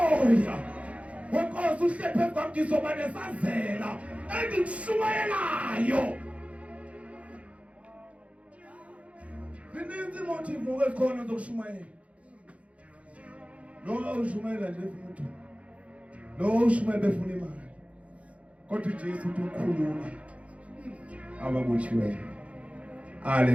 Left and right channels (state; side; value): late; left; 0.064 ms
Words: Wenkosi uhlephe kwam ngizoba nesazela engikushumayelayo. Zininzi motive ezikhona zokushumayela. Lo ushumayela nje umuntu. Lo ushumayela befuna imali. Kodwa uJesu uthi ukhulula ababotshiweyo.